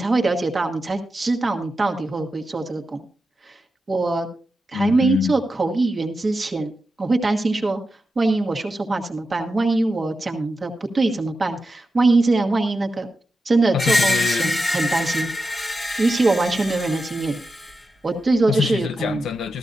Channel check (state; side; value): normal; both; correlation 0.90